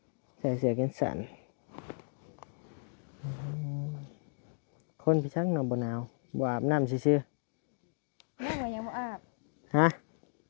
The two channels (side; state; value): right; silent; digital silence